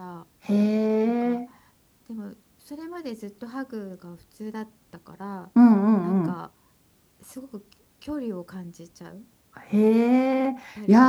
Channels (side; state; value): both; identical; correlation 1.00